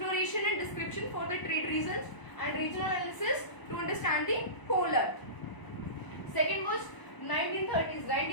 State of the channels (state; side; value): late; right; 1.0 ms